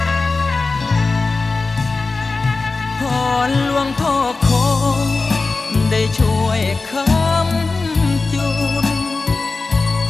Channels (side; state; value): right; quieter; 3.8 dB